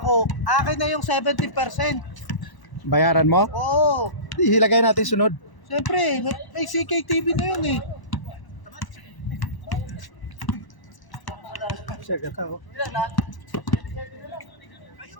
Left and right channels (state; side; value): late; right; 1.0 ms